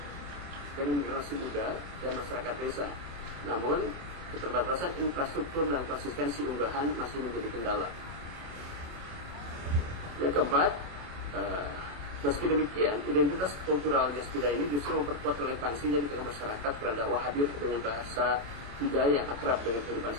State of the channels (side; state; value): left; late; 28 ms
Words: dengan generasi muda dan masyarakat desa. Namun keterbatasan infrastruktur dan konsistensi unggahan masih menjadi kendala. Yang keempat, meski demikian, identitas kultural Yasbida ini justru memperkuat relevansinya di tengah masyarakat karena dakwah hadir dengan bahasa budaya yang akrab dengan kehidupan